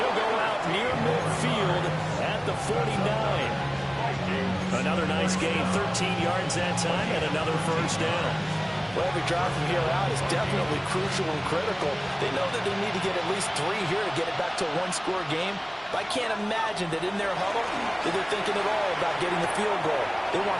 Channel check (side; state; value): both; identical; correlation 1.00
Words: go out near midfield at the 49. Another nice gain, 13 yards that time, and another 1st down. Well, every drive from here out is definitely crucial and critical. They know that they need to get at least 3 here to get it back to a 1-score game. But I can't imagine that in their huddle that they're thinking at all about getting the field goal. They